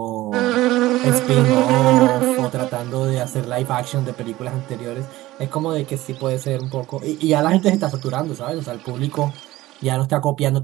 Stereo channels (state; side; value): quieter; left; 17.3 dB